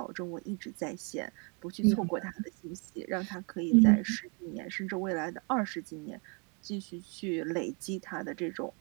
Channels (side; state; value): left; quieter; 34.7 dB